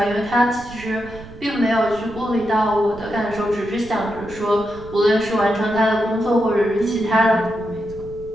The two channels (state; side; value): noise; right; rumble, 17 dB below the sound